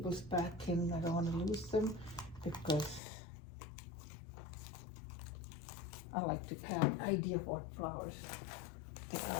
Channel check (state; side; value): drops out; right; at 3.0 s